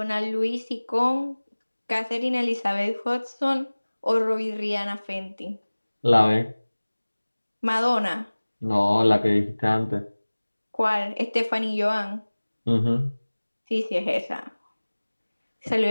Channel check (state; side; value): inverted; both; correlation -1.00